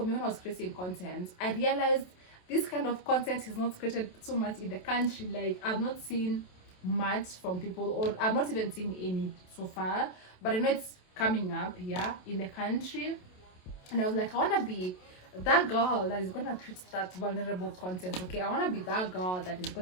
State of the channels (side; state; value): right; late; 27 ms